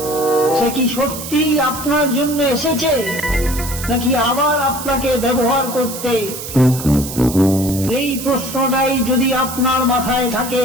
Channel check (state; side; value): noise; right; hiss, 9 dB below the sound